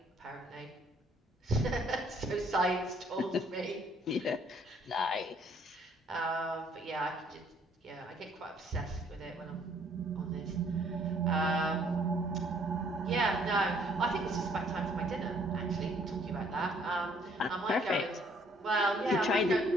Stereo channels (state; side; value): normal; both; correlation 0.63